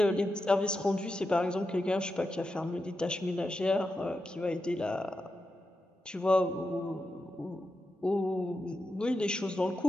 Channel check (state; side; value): normal; both; correlation 0.88